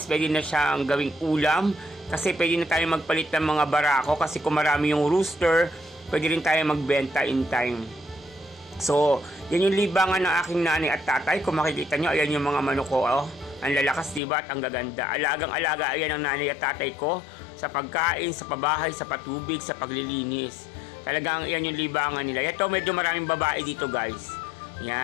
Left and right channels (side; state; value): right; drops out; at 14.2 s